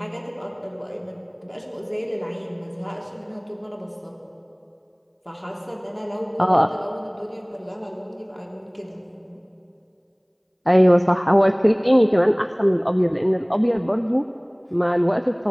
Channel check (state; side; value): identical; both; correlation 1.00